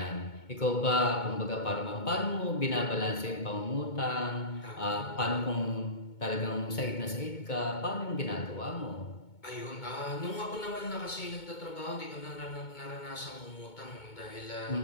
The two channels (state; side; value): late; right; 2.2 ms